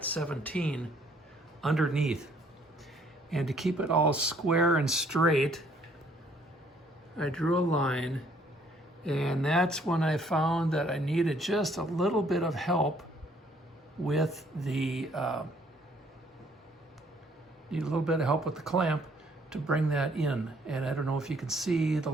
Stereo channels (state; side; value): normal; both; correlation 0.64